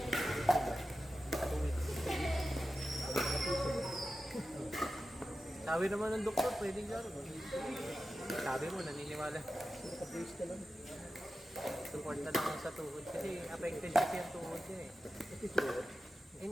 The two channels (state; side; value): normal; both; correlation 0.93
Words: weeks. Sabi naman ng doktor, pwedeng laro. Sabi mo, naniniwala. Naka-brace ka lang. Support na lang sa tuhod. Kasi affected kasi yung tuhod niya eh. Ito ito.